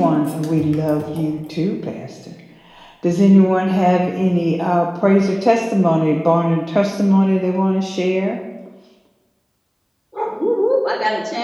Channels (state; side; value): identical; both; correlation 1.00